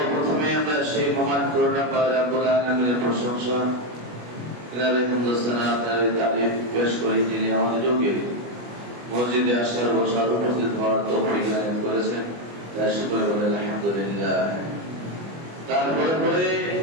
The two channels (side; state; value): left; late; 25 ms